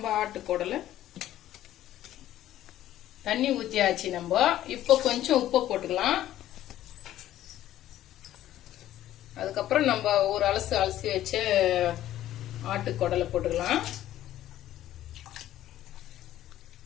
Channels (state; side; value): quieter; right; 13.2 dB